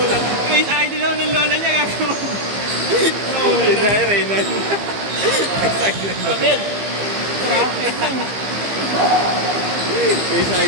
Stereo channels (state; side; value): late; left; 15 ms